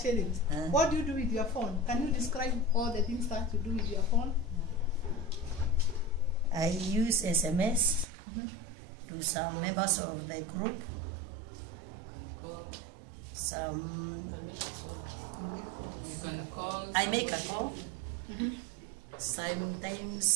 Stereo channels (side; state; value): left; drops out; at 8.1 s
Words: What do you do with your phone? Can you describe all the things that you do with your phone? I use SMS to some members of the group. You can call. I make a call.